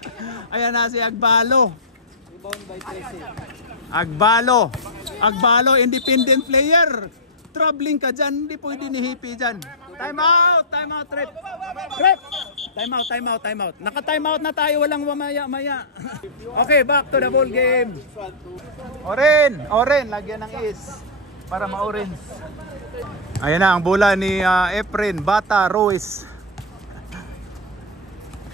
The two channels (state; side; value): normal; both; correlation -0.10